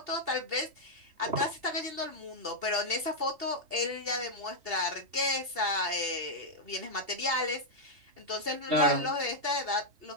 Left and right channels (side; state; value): left; late; 2.7 ms